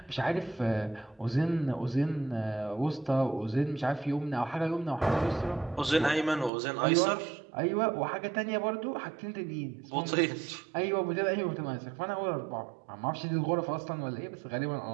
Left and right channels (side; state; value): left; drops out; at 6.5 s